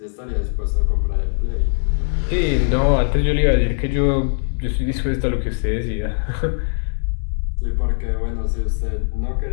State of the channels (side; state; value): right; silent; 60 dB below the other